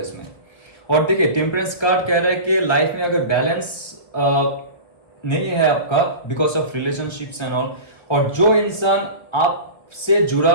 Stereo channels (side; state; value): right; late; 1.7 ms